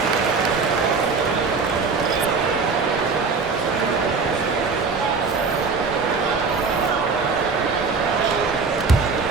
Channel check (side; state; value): left; quieter; 4.6 dB